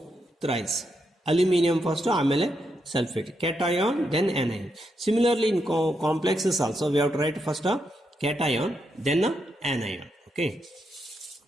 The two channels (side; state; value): both; normal; correlation 0.82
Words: thrice, aluminium first ಆಮೇಲೆ sulfate, cation then anion. Similarly in complexes also we have to write first a cation then a anion. Okay,